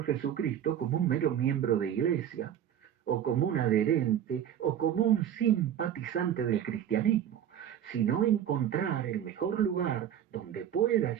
Jesucristo como un mero miembro de iglesia, o como un adherente, o como un simpatizante del cristianismo, sino encontrar el mejor lugar donde pueda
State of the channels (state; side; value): quieter; left; 10.0 dB